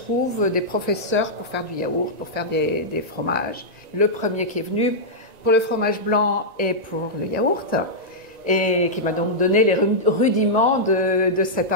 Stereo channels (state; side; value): late; left; 1.9 ms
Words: des professeurs pour faire du yaourt, pour faire des fromages. Le premier qui est venu pour le fromage blanc et pour le yaourt, et qui m'a donc donné les rudiments de cette